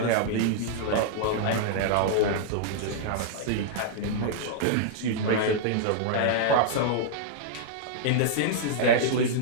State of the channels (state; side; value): different; both; correlation -0.02